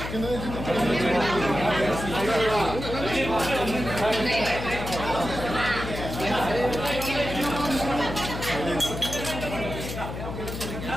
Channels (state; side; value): noise; left; hum, 7 dB below the sound